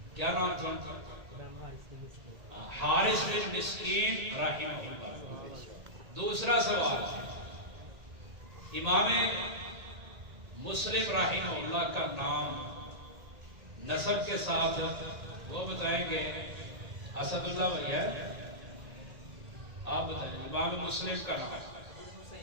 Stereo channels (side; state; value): left; late; 1.8 ms